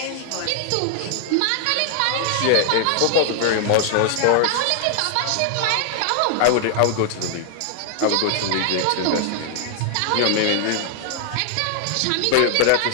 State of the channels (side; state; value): both; different; correlation 0.00